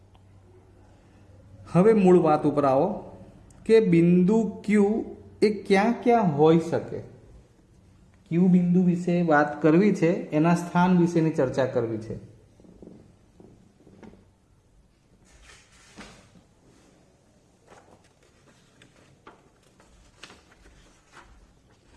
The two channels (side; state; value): both; identical; correlation 1.00